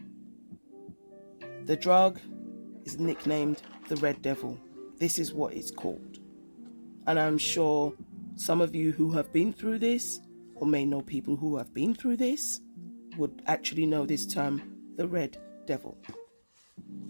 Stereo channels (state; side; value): inverted; both; correlation -1.00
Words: The drug is nicknamed the Red Devil. This is what it's called. And I'm sure some of you who have been through this, or may know people who have been through this, would actually know this term, the Red Devil.